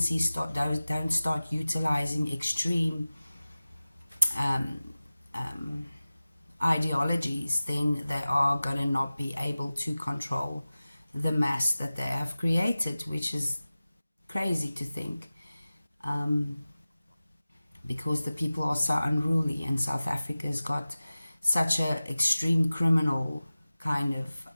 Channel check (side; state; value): both; inverted; correlation -0.97